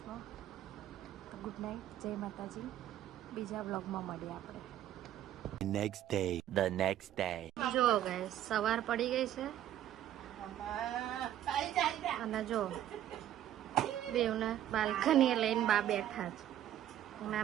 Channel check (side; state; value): left; quieter; 11.9 dB